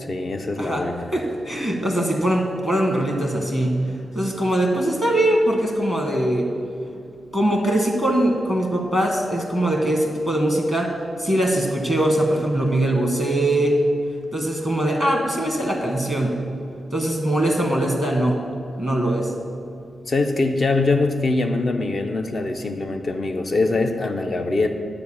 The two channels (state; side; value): noise; right; hum, 29 dB below the sound